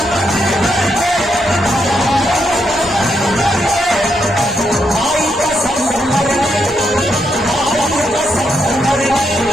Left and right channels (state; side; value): normal; both; correlation 0.80